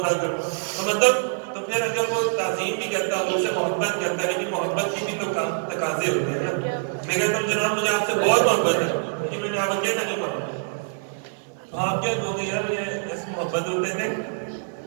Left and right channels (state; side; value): silent; left; 59 dB below the other